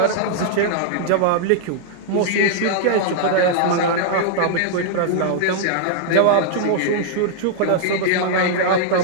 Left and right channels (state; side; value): different; both; correlation -0.01